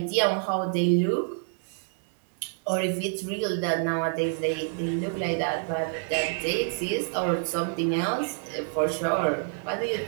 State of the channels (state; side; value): silent; left; 60 dB below the other